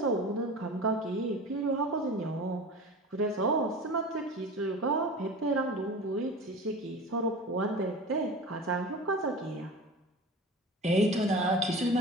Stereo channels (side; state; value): both; normal; correlation 0.34